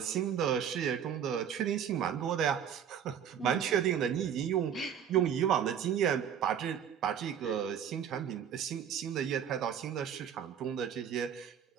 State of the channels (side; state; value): left; quieter; 8.7 dB